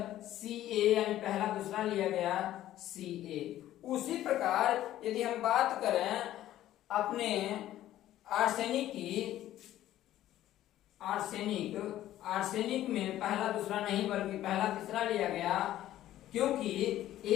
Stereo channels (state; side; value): quieter; right; 13.4 dB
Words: Ca यानी पहला दूसरा लिया गया Ca। उसी प्रकार यदि हम बात करें अपने आर्सेनिक में पहला दूसरा नहीं बल्कि पहला तीसरा लिया गया, क्योंकि